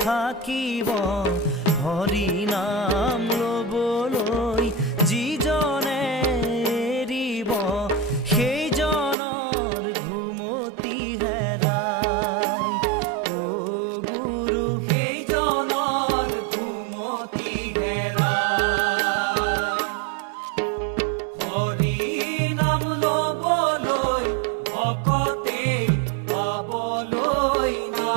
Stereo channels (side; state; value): left; drops out; at 9.2 s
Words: থাকিব, হৰি নাম লবলৈ